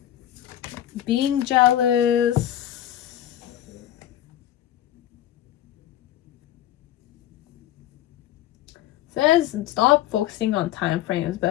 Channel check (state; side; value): quieter; right; 12.5 dB